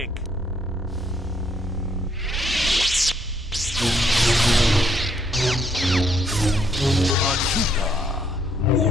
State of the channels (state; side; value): normal; both; correlation 0.70